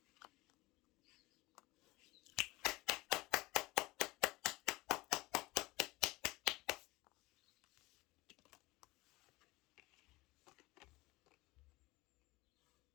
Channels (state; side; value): quieter; right; 21.3 dB